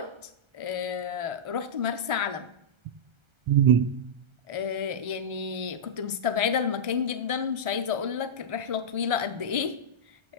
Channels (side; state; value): left; late; 1.3 ms